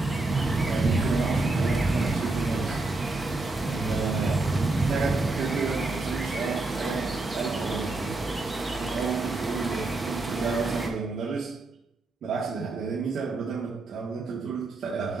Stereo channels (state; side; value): quieter; left; 3.2 dB